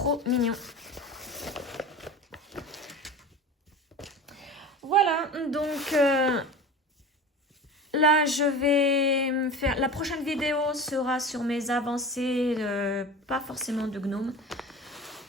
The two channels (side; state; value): both; normal; correlation 0.34